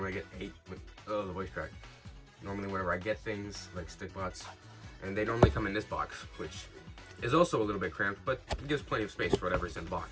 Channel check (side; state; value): both; identical; correlation 1.00